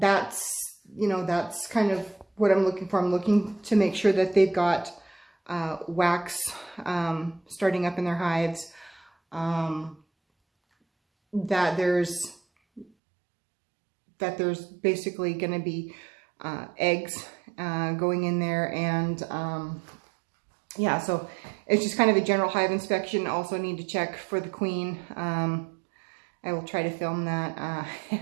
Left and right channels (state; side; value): drops out; left; at 12.9 s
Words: you know, that's kind of what I'm looking for. I'm looking to make sure that they've got wax starting up in their hives, that there's basically going to be eggs going in there, and yeah, so it's just kind of a general hive inspection. Also need to check for the queen. I will try to film that. I